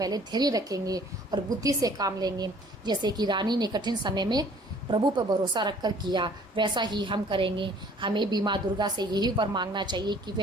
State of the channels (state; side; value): normal; both; correlation 0.55